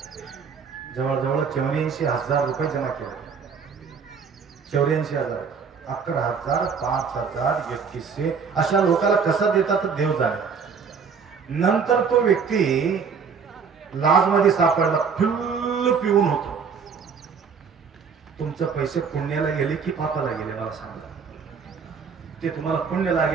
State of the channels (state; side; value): quieter; left; 6.0 dB